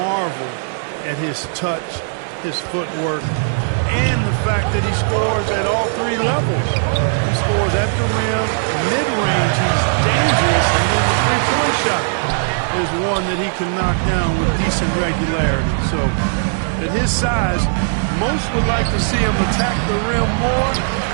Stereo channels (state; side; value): silent; left; digital silence